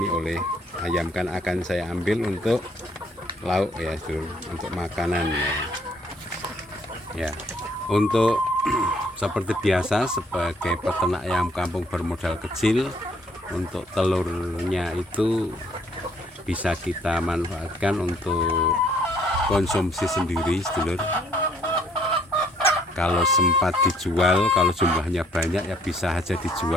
oleh ayam, kan akan saya ambil untuk lauk ya, untuk makanan ya. Ya, untuk seperti biasa sebagai peternak ayam kampung bermodal kecil, untuk telurnya itu bisa kita manfaatkan untuk konsumsi sendiri sedulur. Kalau sempat dijual, kalau jumlahnya banyak ya bisa aja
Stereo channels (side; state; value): both; normal; correlation 0.64